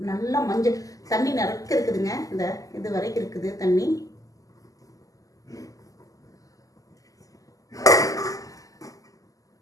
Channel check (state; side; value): late; right; 0.17 ms